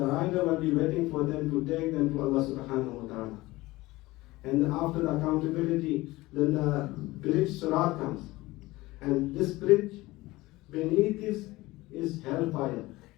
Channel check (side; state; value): right; quieter; 19.6 dB